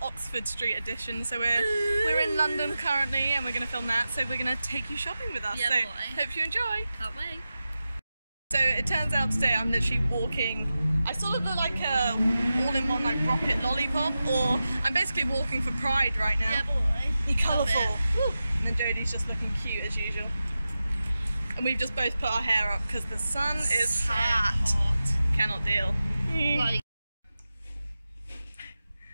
Oxford Street edition. So we're in London currently, and we're going to film that. So we're going to take you shopping with us. Yeah, so boy. hope you enjoy. Can't wait. So it turns out today I'm literally walking. I sort of look like a all-in-one like rocket lollipop, or I'm basically walking for Pride right now. Yeah, boy. Be colourful. Woo. And then Jodie's just looking cute as usual. And we've just both put our hair up because the sun is So hot. Cannot deal. Like,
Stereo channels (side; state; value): both; inverted; correlation -0.93